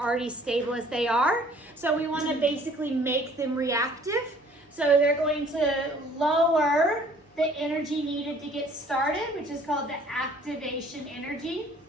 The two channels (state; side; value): normal; both; correlation 0.56